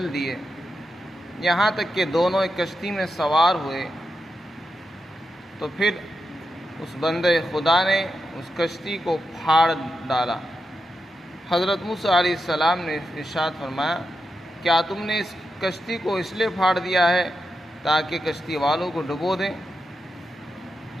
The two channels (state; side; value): normal; both; correlation 0.87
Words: دیے، یہاں تک کہ دونوں ایک کشتی میں سوار ہوئے۔ تو پھر اس بندہ خدا نے اس کشتی کو پھاڑ ڈالا۔ حضرت موسیٰ علیہ السلام نے ارشاد فرمایا کیا تم نے اس کشتی کو اس لیے پھاڑ دیا ہے تاکہ کشتی والوں کو ڈبو دیں؟